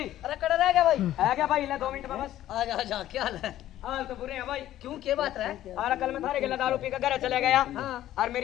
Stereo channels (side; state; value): right; quieter; 13.2 dB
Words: अरे कड़ा रह गया भाई। है क्या भाई? ले 2 मिनट में बस। आ जा क्या हाल है? हाल तो बुरे हैं भाई। क्यों क्या बात है? और कल मैं थारे के दारू पी कर घर चले गया हाँ। और